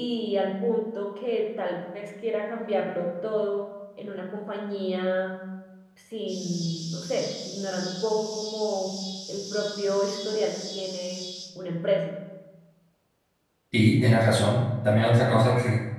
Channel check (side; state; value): both; identical; correlation 1.00